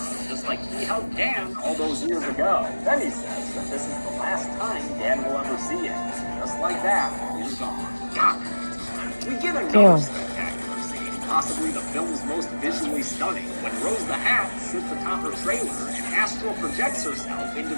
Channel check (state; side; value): inverted; both; correlation -1.00